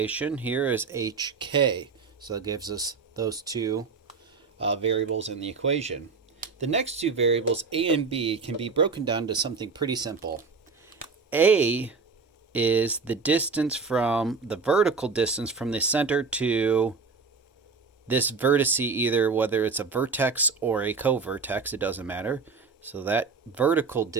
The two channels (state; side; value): quieter; left; 4.7 dB